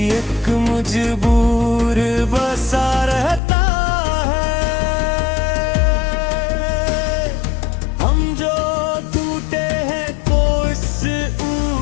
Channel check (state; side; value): drops out; right; at 3.4 s